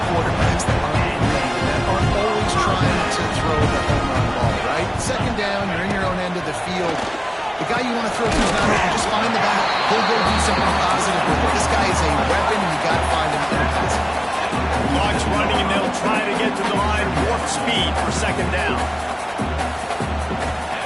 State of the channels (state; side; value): identical; both; correlation 1.00